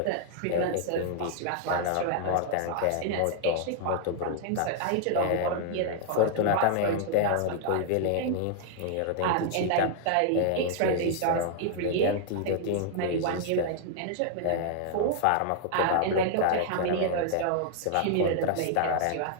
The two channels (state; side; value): different; both; correlation -0.01